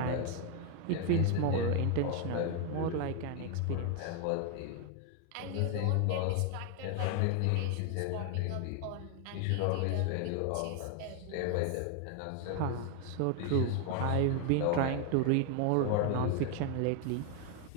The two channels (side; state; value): both; different; correlation 0.01